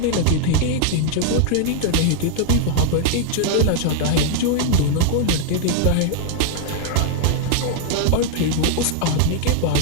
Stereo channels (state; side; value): different; both; correlation 0.00